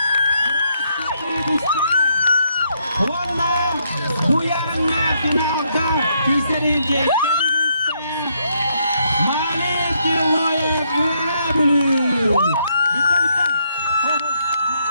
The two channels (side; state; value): both; inverted; correlation -0.74